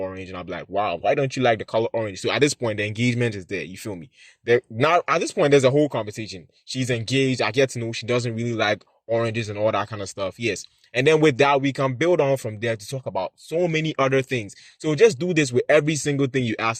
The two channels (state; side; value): identical; both; correlation 1.00